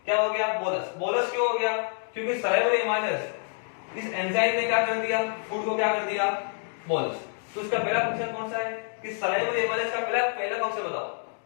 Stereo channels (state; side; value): silent; right; 59 dB below the other